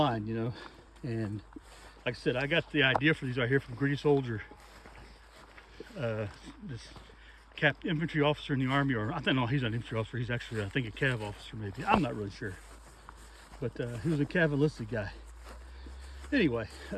And like I said, I got the idea for these right here from Gritty Soldier. This infantry officer in the army, or I don't know, he's not an infantry officer, he's actually, I think, a cav officer maybe. I'm not really sure. But he was a cav enlisted guy. Anyway,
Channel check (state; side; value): identical; both; correlation 1.00